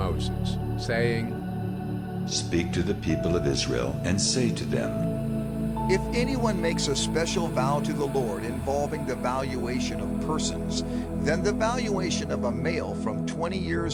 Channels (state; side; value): identical; both; correlation 1.00